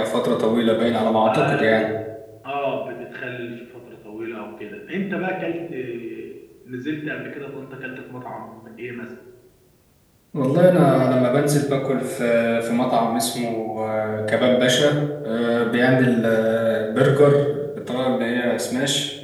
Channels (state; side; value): identical; both; correlation 1.00